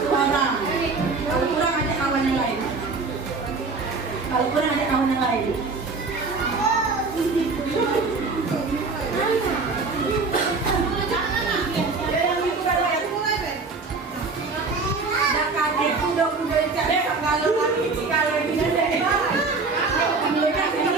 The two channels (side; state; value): left; quieter; 4.2 dB